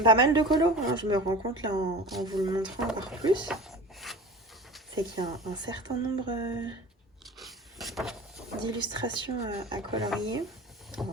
pas mal de colos, hein. Je me rends compte là en vous le montrant encore plus. C'est qu'il y a un certain nombre d'illustrations à colorier. Oh,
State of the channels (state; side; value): normal; both; correlation 0.36